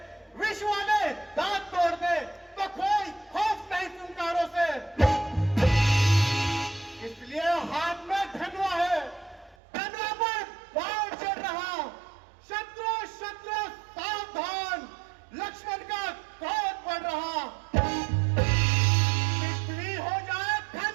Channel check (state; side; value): drops out; left; at 9.6 s